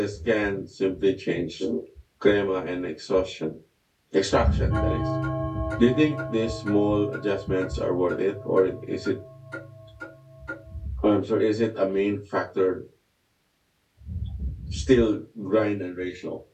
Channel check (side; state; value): both; identical; correlation 1.00